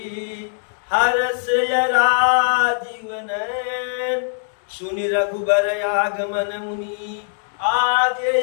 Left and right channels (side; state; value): right; silent; digital silence